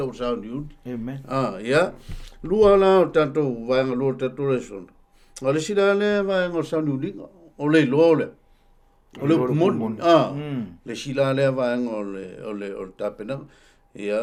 sa ni amen ia lua la tanto va lo tanto reson ale sila le va ngo sa ni linga o le lo le o le mon le sila le va ngo le o tapena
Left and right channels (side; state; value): both; identical; correlation 1.00